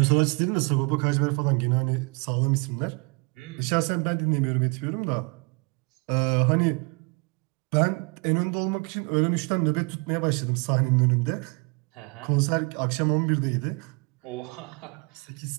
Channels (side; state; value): left; quieter; 31.8 dB